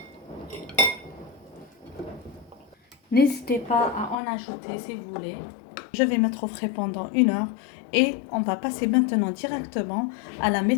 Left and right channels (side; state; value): right; drops out; at 4.2 s